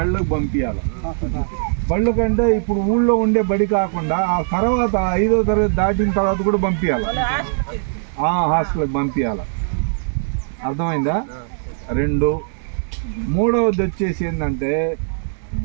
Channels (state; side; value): silent; left; 66 dB below the other